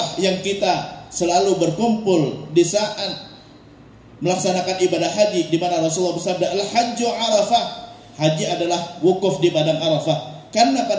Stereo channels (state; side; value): identical; both; correlation 1.00